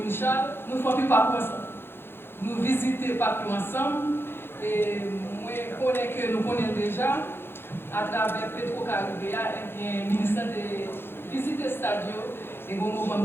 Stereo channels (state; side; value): late; right; 0.11 ms